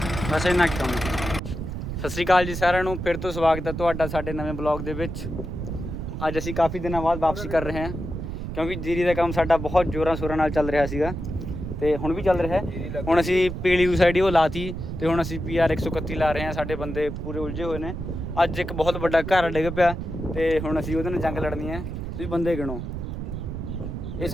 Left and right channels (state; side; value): noise; right; rumble, 6 dB below the sound